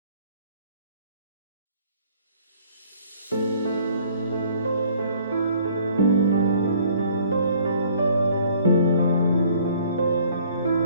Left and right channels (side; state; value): both; inverted; correlation -0.58